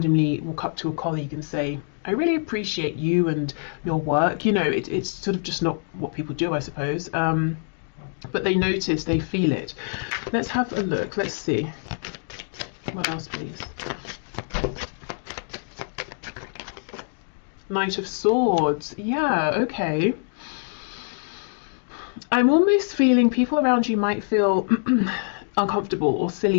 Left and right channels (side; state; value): right; silent; digital silence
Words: walk up to a colleague and say, I really appreciate you and your work. It's sort of just not what people do, I suppose. But they notice, they feel it. Let's have a look. Let's see. What else, please? Knight of Swords. Yeah, okay. I'm almost feeling people around you might feel uncomfortable or